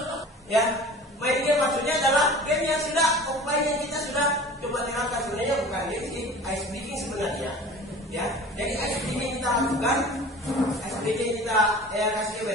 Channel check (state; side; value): normal; both; correlation 0.41